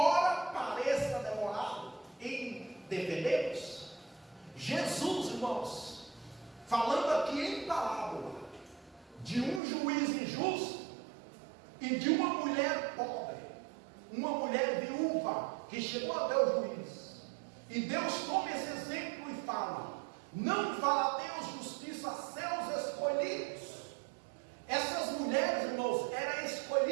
pareça demorado em defendê-los. Jesus, irmãos, falando aqui em parábola de um juiz injusto e de uma mulher pobre, uma mulher viúva que chegou até o juiz, e Deus toma esse exemplo e fala: não fará Deus justiça a seus escolhidos. Essas mulheres, irmãos, eram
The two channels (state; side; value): drops out; left; at 9.6 s